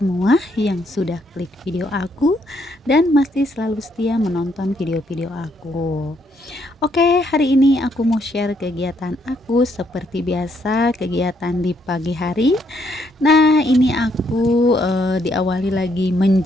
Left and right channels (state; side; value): normal; both; correlation 0.72